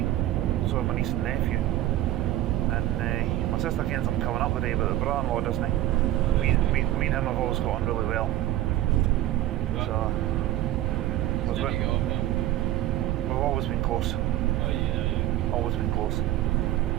so my niece and nephew. And my sister kens I'm coming up today, but the brother-in-law doesn't. Me and him have always got on really well. So we've always been close. Always been close.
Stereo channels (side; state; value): left; quieter; 14.1 dB